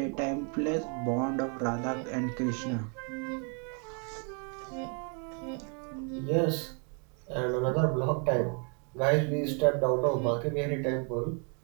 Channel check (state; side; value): quieter; left; 39.2 dB